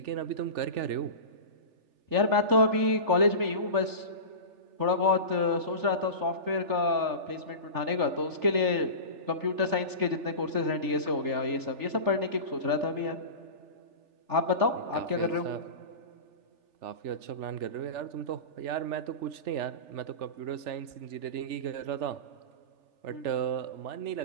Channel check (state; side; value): late; left; 3.4 ms